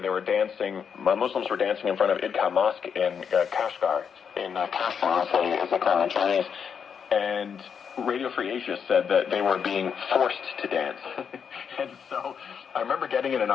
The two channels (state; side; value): quieter; right; 7.0 dB